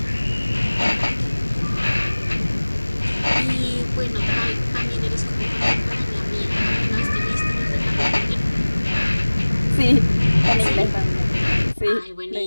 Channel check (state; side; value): inverted; both; correlation -1.00